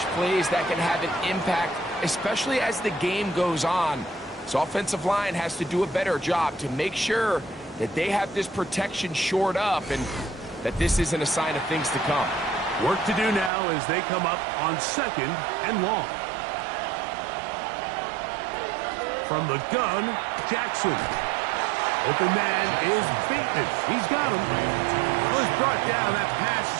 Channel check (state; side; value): drops out; left; at 13.5 s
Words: plays that can have an impact, especially as the game goes on. So offensive line has to do a better job to make sure that they have this protection shored up and that this isn't a sign of things to come. Work to do now as they come up on 2nd and long. From the gun, Jackson. Open man is Bateman. He's got him. Well, he's brought down. That pass